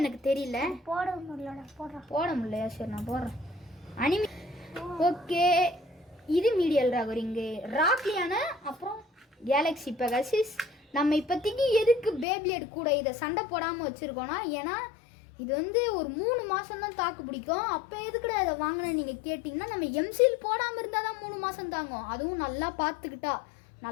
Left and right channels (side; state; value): right; drops out; at 12.2 s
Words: தெரியல. போட முடியலையா? சரி நான் போடுறேன். Anime okay. இது மீடியல் ராகரிங்கு ராக்லியான. அப்புறம் கேலக்ஸி பெகாசிஸ். நம்ம இப்போதைக்கு எதுக்கு பேப்ளேட் கூட இதை சண்டை போடாமல் வச்சுருக்கோன்னா, ஏன்னா இது ஒரு 3 மாதம் தான் தாக்கு பிடிக்கும். அப்போ எதுக்குடா இதை வாங்கினேன் நீங்கள் கேட்டிங்கன்னா, நம்ம எம்சில் போடாமல் இருந்தால் தான் 3 மாதம் தாங்கும். அதுவும் நல்லா